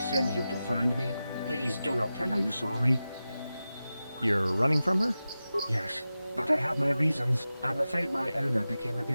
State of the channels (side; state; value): both; inverted; correlation -0.94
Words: you to find me? Please do not tell her you saw me. You're running from her? Yes, but I have my reasons. I'm afraid my owner became a